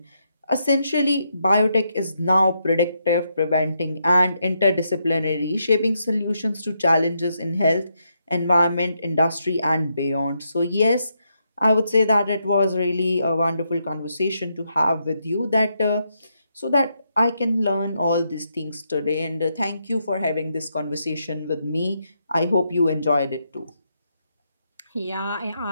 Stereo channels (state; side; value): inverted; both; correlation -0.80